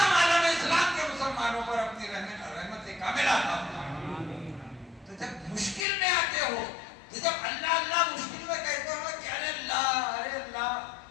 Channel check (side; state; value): right; drops out; at 5.9 s